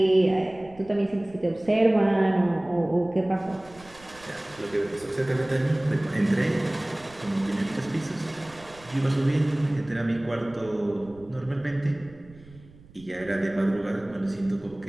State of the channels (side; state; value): right; noise; rumble, 23 dB below the sound